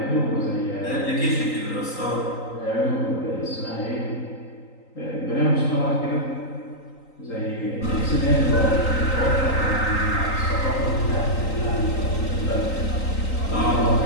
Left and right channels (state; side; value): late; right; 3.9 ms